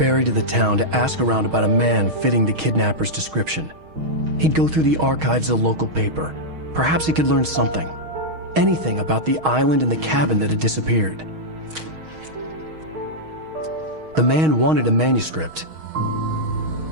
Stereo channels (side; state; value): left; late; 6.4 ms